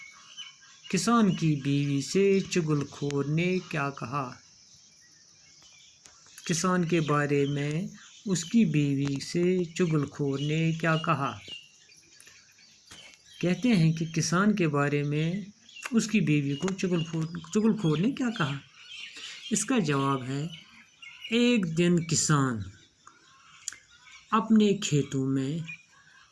किसान की बीवी से चुगलखोर ने क्या कहा? किसान के बारे में उसकी बीवी से चुगलखोर ने क्या कहा? कहते हैं कि किसान के बारे में उसकी बीवी को चुगलखोर ने क्या कहा? इसका जवाब है, एक दिन किसान अपने खेतों में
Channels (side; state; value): both; identical; correlation 1.00